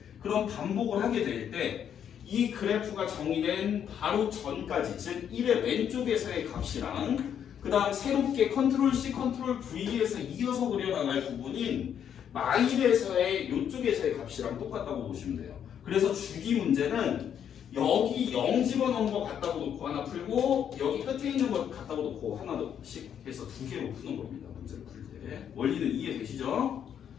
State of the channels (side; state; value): right; quieter; 8.8 dB